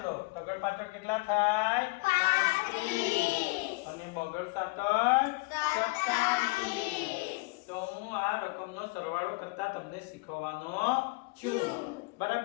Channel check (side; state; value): right; quieter; 26.6 dB